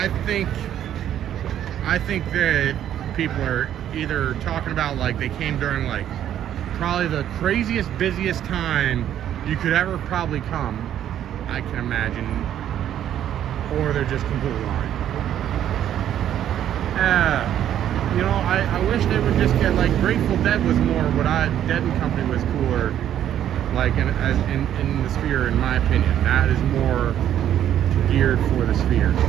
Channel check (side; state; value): left; quieter; 10.8 dB